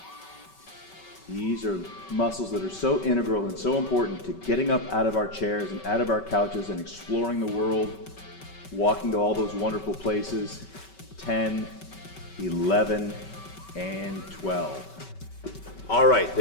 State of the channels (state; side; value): late; right; 5.2 ms